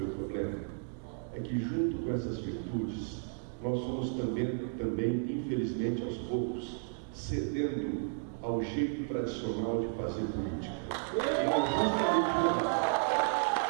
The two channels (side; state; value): left; silent; digital silence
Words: o problema? É que junto com essas virtudes, nós fomos também, infelizmente, aos poucos, cedendo ao jeito tradicional de fazer política. E